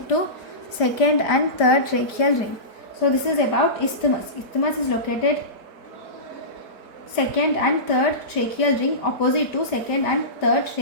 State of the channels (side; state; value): right; late; 5.0 ms